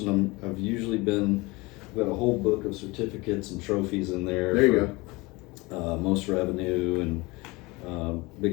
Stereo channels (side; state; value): right; quieter; 23.9 dB